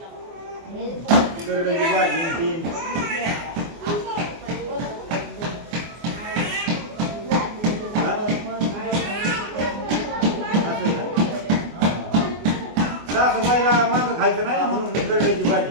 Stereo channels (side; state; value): left; late; 24 ms